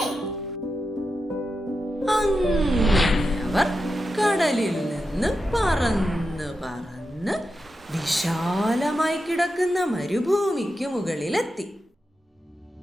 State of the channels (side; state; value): both; normal; correlation 0.89